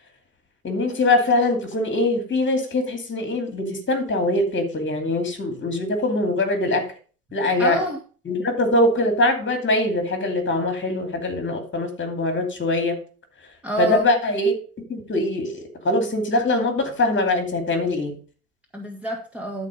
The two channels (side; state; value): both; normal; correlation 0.09